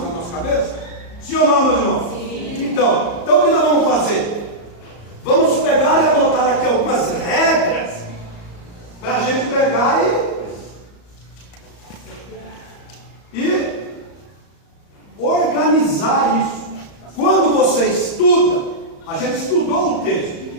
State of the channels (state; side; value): late; right; 34 ms